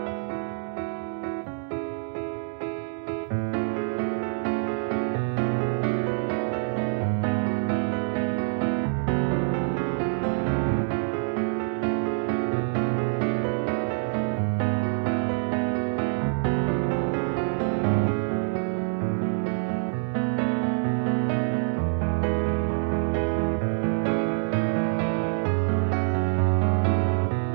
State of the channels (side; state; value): left; silent; 61 dB below the other